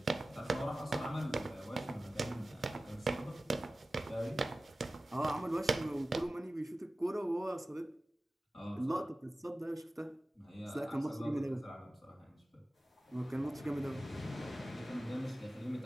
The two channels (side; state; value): both; normal; correlation 0.96